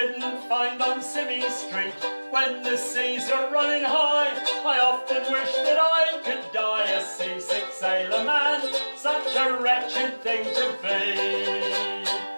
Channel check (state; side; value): inverted; both; correlation -1.00